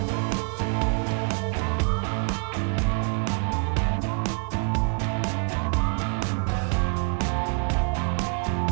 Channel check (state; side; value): quieter; left; 39.5 dB